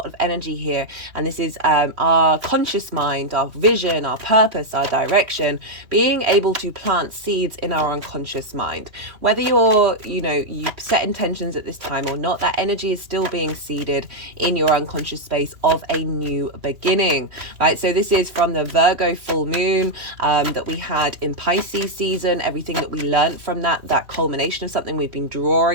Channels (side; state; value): left; late; 2.8 ms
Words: of energy here. And this is our conscious mind, our vision, our purpose, our direction, being able to plant seeds in our unconscious mind. Whether you set intentions at this time or not, that energy is still being seeded in your unconscious space of a new beginning, right? So this is from the Virgo full moon that we had in Pisces season, everything that we learned from that culmination of something. We've been